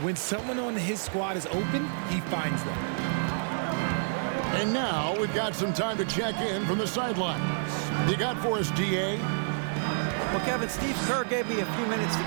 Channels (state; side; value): silent; left; digital silence